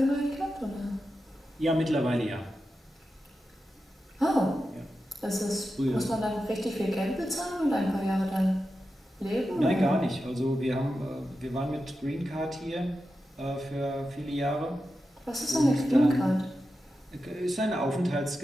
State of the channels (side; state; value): both; normal; correlation 0.90